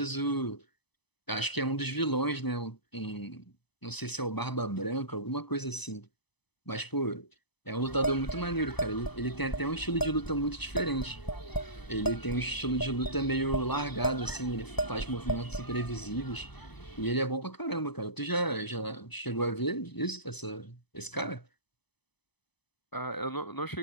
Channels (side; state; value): right; late; 0.99 ms